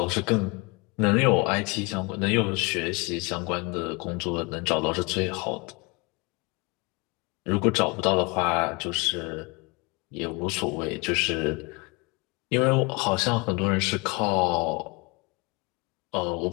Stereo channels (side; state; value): right; quieter; 27.6 dB